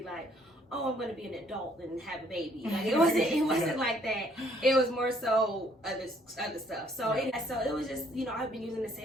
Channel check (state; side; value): normal; both; correlation 0.65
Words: like, oh, I'm gonna be an adult and have a baby. Like it wasn't like that. It was more so other stuff. So it was just, you know, I've been using the